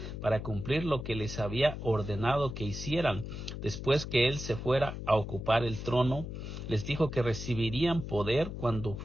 para cumplir lo que les había ordenado que hicieran. Después que Él se fuera a ocupar el trono, les dijo que recibirían poder cuando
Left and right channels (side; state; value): left; noise; hum, 7 dB below the sound